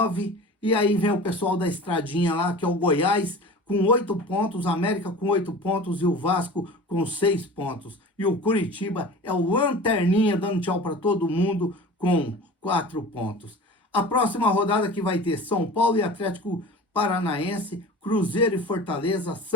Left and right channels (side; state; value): both; normal; correlation 0.37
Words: e aí vem o pessoal da estradinha lá, que é o Goiás, com 8 pontos, América com 8 pontos e o Vasco com 6 pontos. E o Curitiba é o lanterninha, dando tchau para todo mundo, com 4 pontos. A próxima rodada que vai ter São Paulo e Atlético Paranaense, Cruzeiro e Fortaleza,